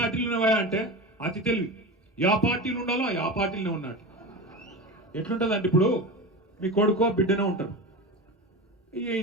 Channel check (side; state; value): both; normal; correlation 0.26